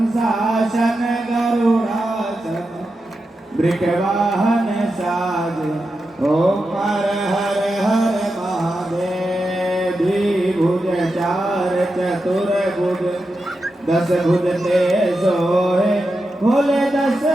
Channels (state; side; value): normal; both; correlation 0.89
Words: गरुड़ाशन वृषवाहन साज ओम हर हर हर महादेव द्विभुज चार चतुर्भुज दस भुज ते सोहे भोले दस